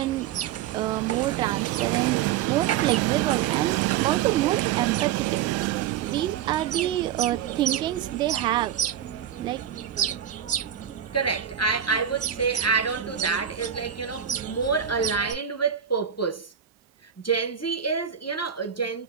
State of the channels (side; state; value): left; quieter; 9.3 dB